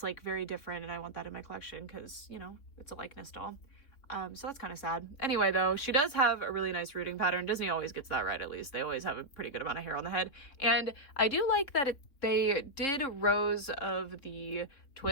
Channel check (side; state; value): right; late; 3.4 ms